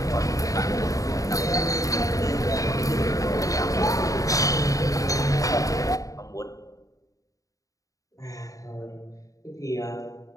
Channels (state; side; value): late; right; 0.16 ms